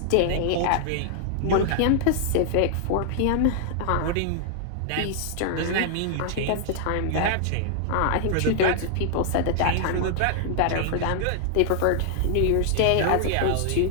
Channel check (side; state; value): both; different; correlation 0.00